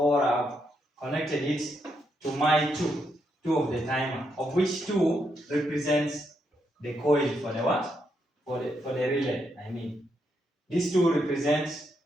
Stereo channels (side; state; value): both; normal; correlation 0.79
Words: I've connected it to my two of the timer, of which 2 represents the coil for the what? For the relay. I mean, these 2 represents